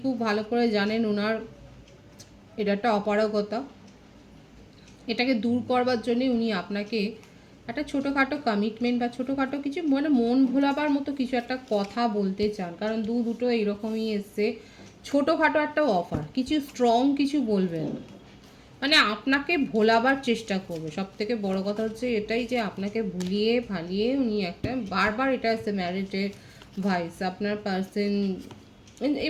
খুব ভালো করে জানেন ওনার এটা একটা অপারগতা। এটাকে দূর করবার জন্যে উনি আপনাকে একটা ছোটোখাটো কমিটমেন্ট বা ছোটোখাটো কিছু, মানে মন ভোলাবার মতো কিছু একটা কথা বলতে চান, কারণ দুটো এইরকমই এসছে। ছোটোখাটো একটা অফার, কিছু স্ট্রং কিছু বলবেন, মানে আপনাকে ভোলাবার চেষ্টা করবে। সব থেকে বড় কথা হচ্ছে এটাই যে আপনাকে ভুলিয়ে ভালিয়ে উনি একটা বারবার এটা আছে ম্যারিটের ভাইস আপনার পার্সন,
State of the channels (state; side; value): identical; both; correlation 1.00